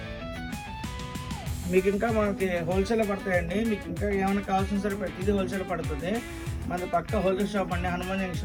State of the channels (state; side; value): identical; both; correlation 1.00